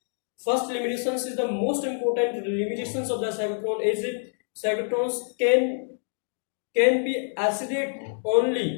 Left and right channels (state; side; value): silent; right; digital silence